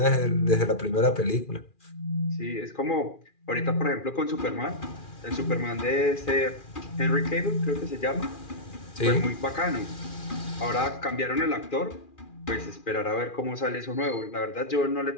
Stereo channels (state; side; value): late; right; 2.4 ms